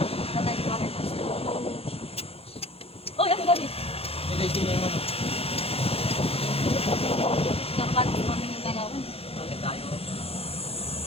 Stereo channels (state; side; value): late; right; 0.28 ms